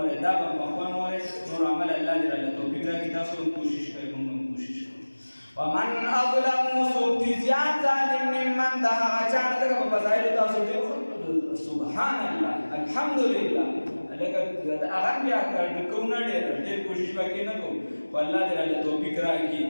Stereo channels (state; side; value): inverted; both; correlation -1.00